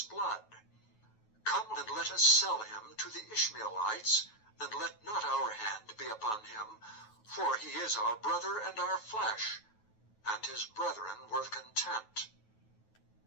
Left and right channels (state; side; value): late; right; 9.3 ms